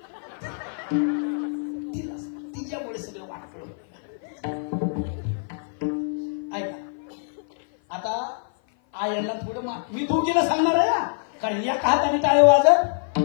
तिला तिच्यामुळे सगळं वाटलं. ऐका, आता आयांना थोडं मी दोघीला सांगणार आहे, कारण एका हाताने टाळे वाजत.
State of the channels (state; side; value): silent; right; 56 dB below the other